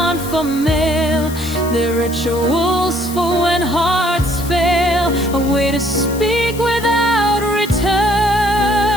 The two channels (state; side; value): noise; left; hiss, 14 dB below the sound